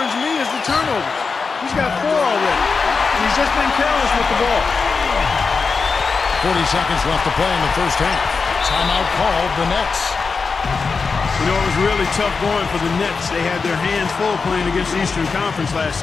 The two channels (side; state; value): right; quieter; 4.8 dB